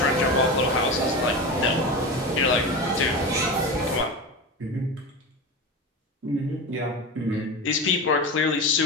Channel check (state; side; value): normal; both; correlation 0.24